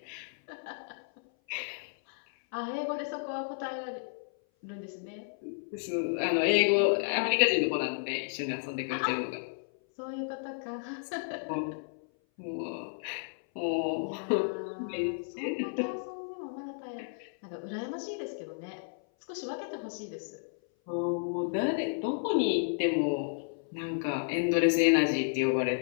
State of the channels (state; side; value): silent; right; 56 dB below the other